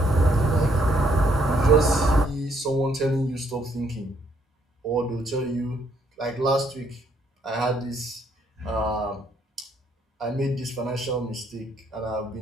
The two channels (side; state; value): both; normal; correlation 0.70